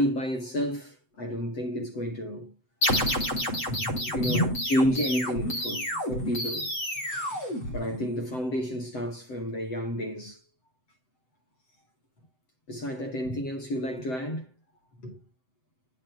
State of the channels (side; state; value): right; late; 7.8 ms